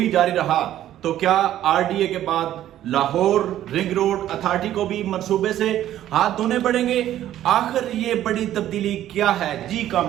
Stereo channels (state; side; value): quieter; left; 12.4 dB